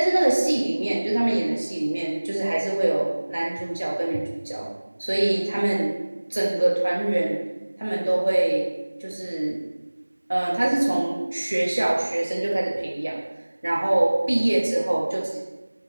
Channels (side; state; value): both; inverted; correlation -1.00